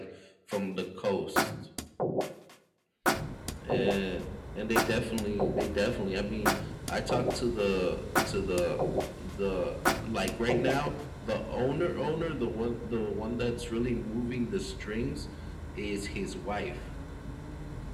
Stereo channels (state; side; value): identical; both; correlation 1.00